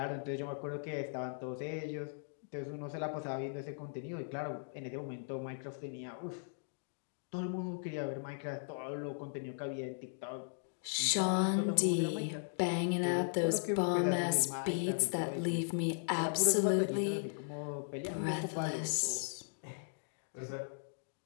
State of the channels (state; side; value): silent; right; digital silence